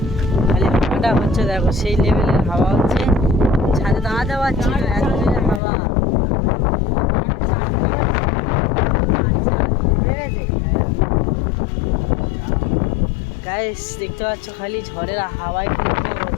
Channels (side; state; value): right; drops out; at 5.6 s